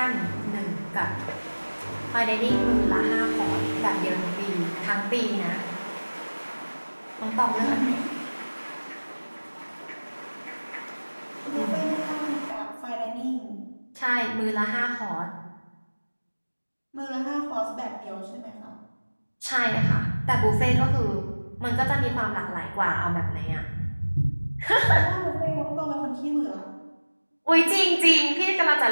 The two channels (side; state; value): both; inverted; correlation -1.00